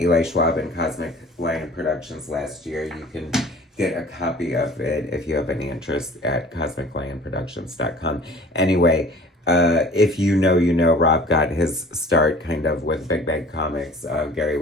Schwab, and Cosmic Lion Productions last year. You can get a copy of it if you have any interest at cosmiclionproductions.com. Anyway, if you know, Rob got his start kind of with Big Bang Comics. Gary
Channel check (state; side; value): normal; both; correlation 0.46